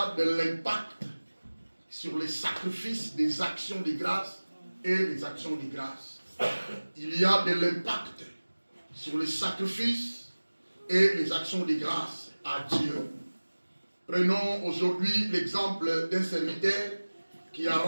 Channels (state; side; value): inverted; both; correlation -1.00